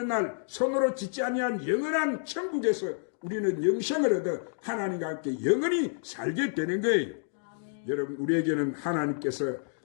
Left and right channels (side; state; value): right; silent; digital silence